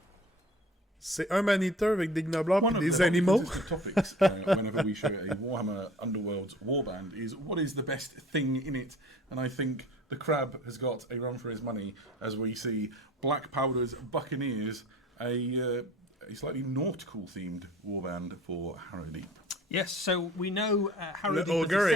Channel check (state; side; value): normal; both; correlation 0.46